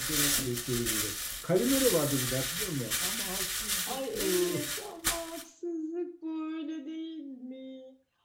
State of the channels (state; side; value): identical; both; correlation 1.00